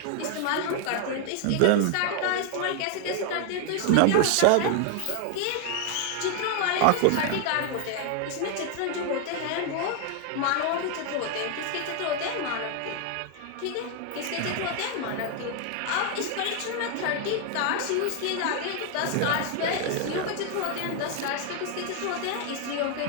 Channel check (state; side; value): different; both; correlation 0.00